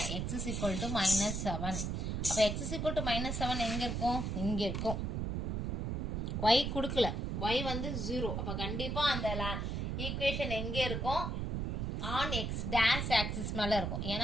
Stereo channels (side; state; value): right; noise; rumble, 1 dB below the sound